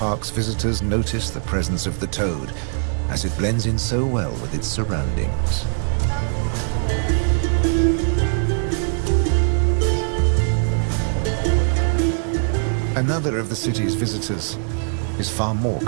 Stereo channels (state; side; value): silent; left; digital silence